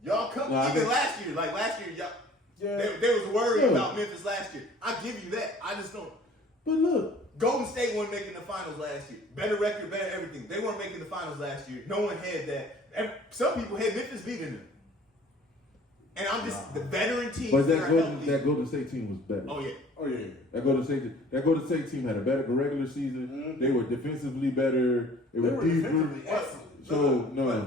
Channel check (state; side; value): normal; both; correlation 0.51